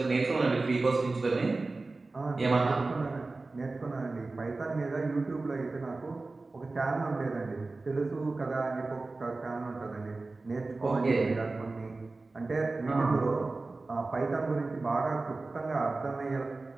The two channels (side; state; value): left; quieter; 3.5 dB